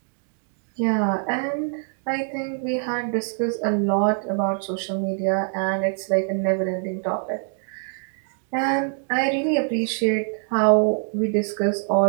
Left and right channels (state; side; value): silent; left; 56 dB below the other